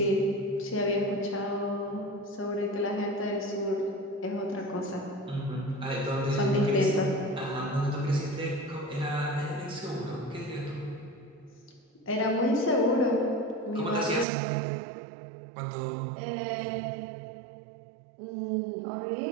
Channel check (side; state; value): left; drops out; at 14.2 s